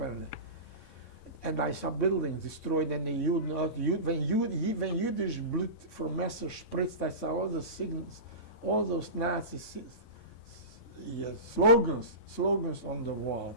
I saw buildings destroyed and when Yiddish blood from Messer spritzed, I saw all the signals, all those Nazi slogans on the wall.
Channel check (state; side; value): late; right; 8.4 ms